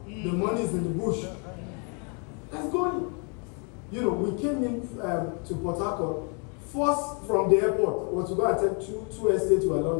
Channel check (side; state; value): right; quieter; 37.4 dB